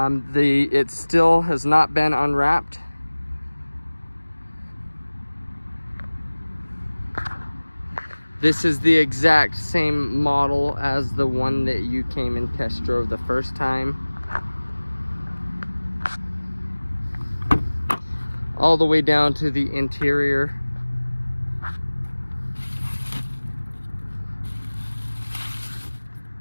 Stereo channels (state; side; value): inverted; both; correlation -1.00